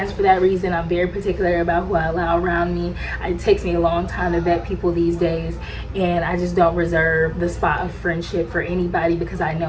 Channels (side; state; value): both; identical; correlation 1.00